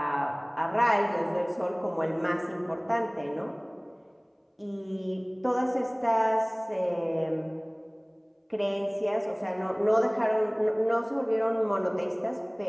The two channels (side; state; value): both; identical; correlation 1.00